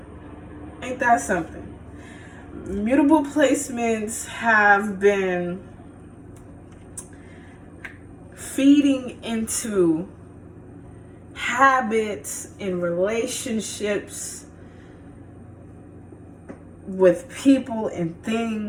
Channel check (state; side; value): identical; both; correlation 1.00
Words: Ain't that something? Mutable placements have been feeding into habits and relationships with people and